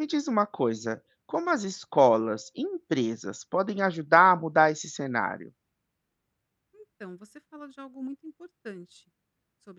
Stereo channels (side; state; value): both; identical; correlation 1.00